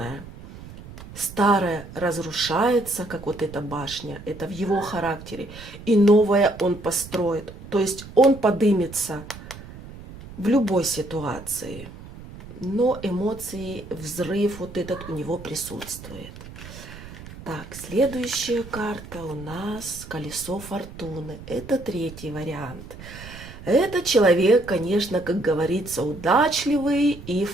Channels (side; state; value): right; noise; rumble, 15 dB below the sound